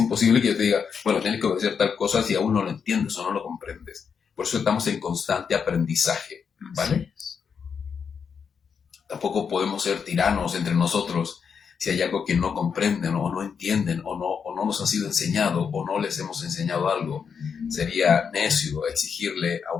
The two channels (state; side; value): quieter; right; 6.5 dB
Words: que yo te diga, bueno, tienes que obedecer tal cosa si aún no lo entiendes o no lo comprendes. Por eso estamos en constante aprendizaje, ¿vale? Tampoco podemos ser tiranos entre nosotros si hay algo que no comprenden o no entienden o no nos ha sido enseñado o no les hemos enseñado algo. Sería necio exigirle a